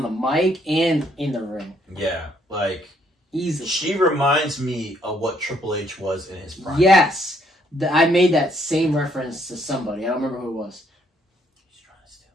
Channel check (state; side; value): normal; both; correlation 0.68